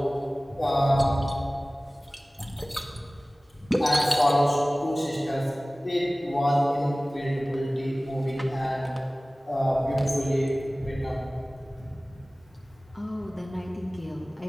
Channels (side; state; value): both; normal; correlation 0.98